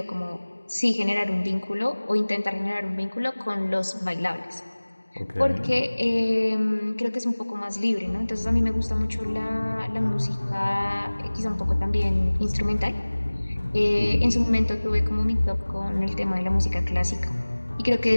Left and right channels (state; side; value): inverted; both; correlation -1.00